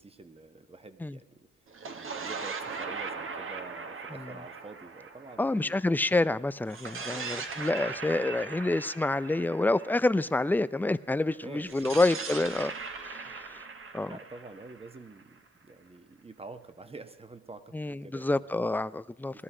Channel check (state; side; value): normal; both; correlation 0.82